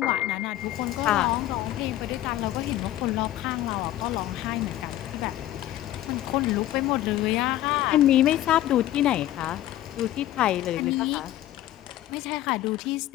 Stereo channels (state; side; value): quieter; right; 13.9 dB